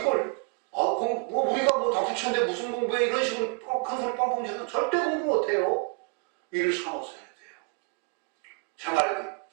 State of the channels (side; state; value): left; quieter; 34.2 dB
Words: 우리가 다 부처인데 무슨 공부해 이런 식으로 큰 소리 뻥뻥 지르면 절대 공부 못해요. 이를 삼아서 해야 돼요. 제 말이